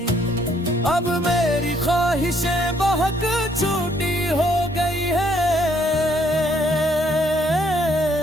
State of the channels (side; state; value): both; normal; correlation 0.68